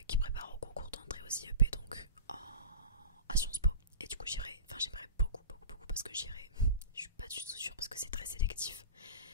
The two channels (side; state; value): both; inverted; correlation -0.31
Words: qui prépare au concours d'entrée au IEP, donc à Sciences Po. Et du coup j'aimerais beaucoup parce que j'irai, je suis pas du tout sûre parce que c'est très sélectif,